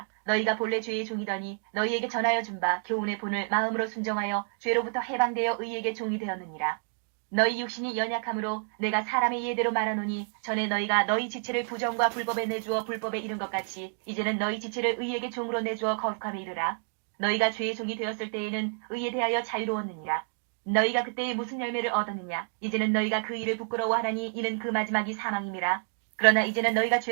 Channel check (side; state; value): left; silent; 56 dB below the other